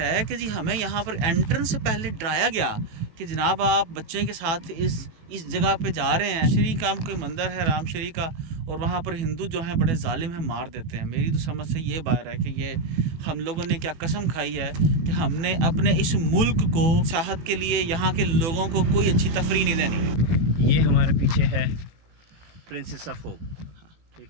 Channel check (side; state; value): left; late; 18 ms